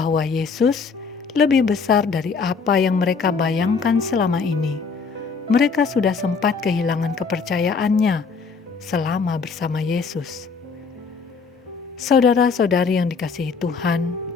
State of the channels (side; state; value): right; quieter; 5.1 dB